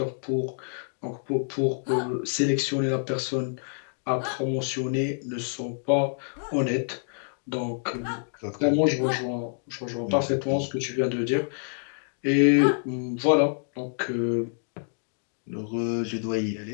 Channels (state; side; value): silent; right; digital silence